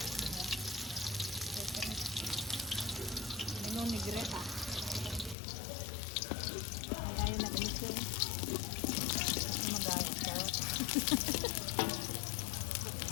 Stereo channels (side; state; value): right; drops out; at 5.4 s